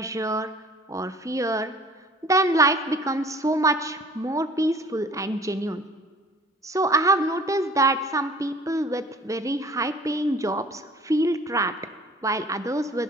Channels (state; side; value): normal; both; correlation 0.49